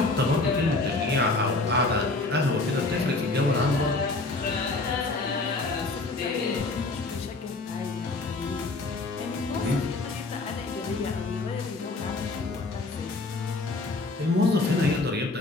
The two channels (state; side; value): quieter; right; 3.3 dB